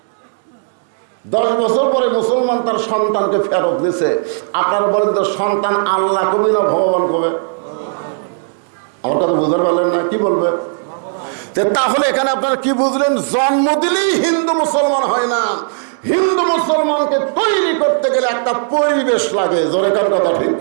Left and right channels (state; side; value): silent; left; digital silence